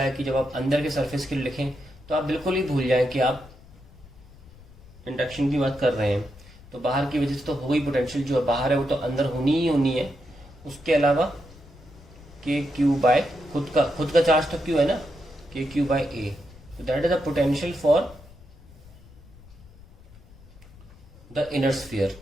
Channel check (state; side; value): noise; left; rumble, 22 dB below the sound